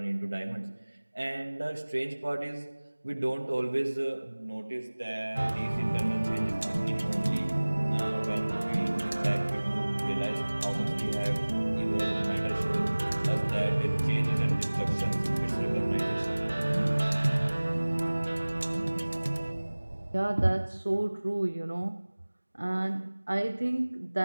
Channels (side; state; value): both; inverted; correlation -1.00